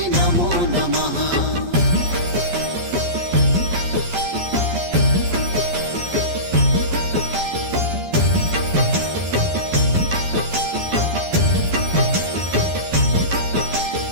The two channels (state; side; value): late; left; 11 ms